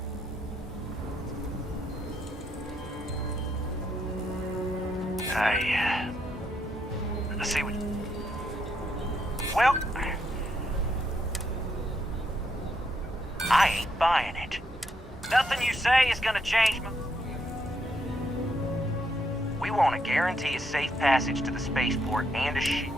I see what... Well... I ain't buying it. Nothing you say is gonna change my... We want to guarantee a safe passage to the spaceport and a ship.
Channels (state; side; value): normal; both; correlation 0.77